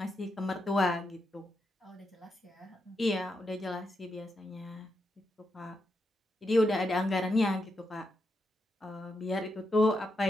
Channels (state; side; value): normal; both; correlation 0.83